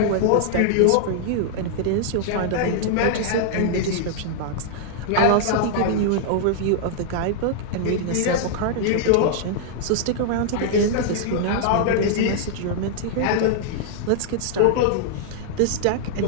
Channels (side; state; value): both; different; correlation -0.01